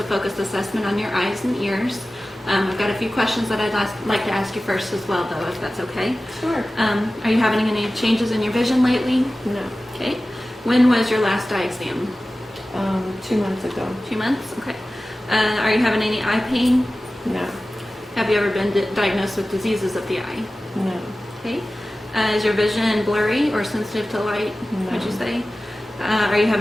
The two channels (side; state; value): both; normal; correlation 0.96